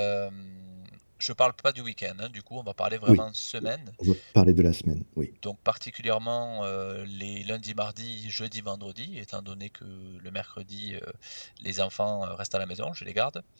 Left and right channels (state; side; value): inverted; both; correlation -1.00